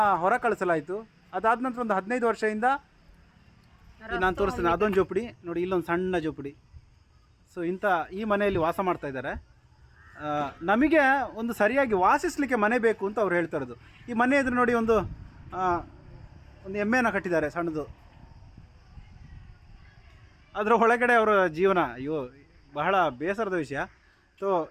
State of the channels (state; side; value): identical; both; correlation 1.00